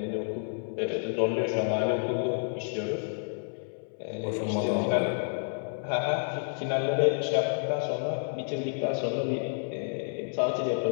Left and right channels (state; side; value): silent; right; 58 dB below the other